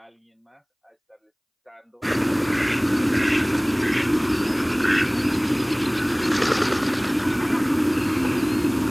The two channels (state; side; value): identical; both; correlation 1.00